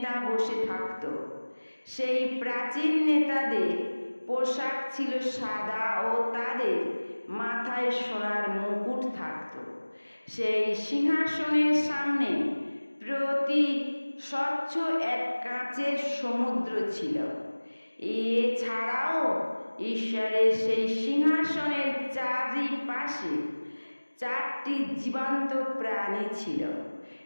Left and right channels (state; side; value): inverted; both; correlation -1.00